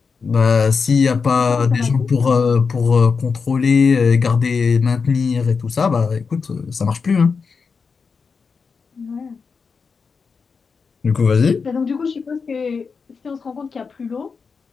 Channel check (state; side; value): quieter; right; 5.3 dB